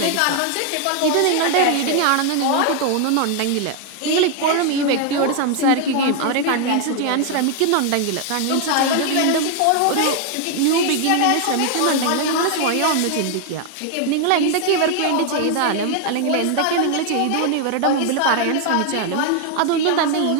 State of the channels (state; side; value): different; both; correlation 0.00